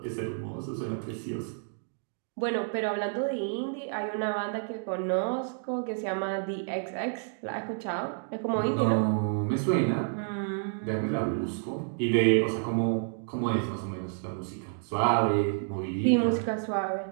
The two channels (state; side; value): silent; left; digital silence